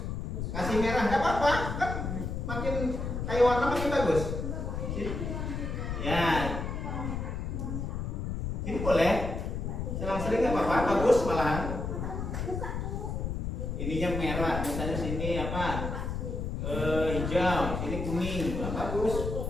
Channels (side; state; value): left; noise; rumble, 3 dB below the sound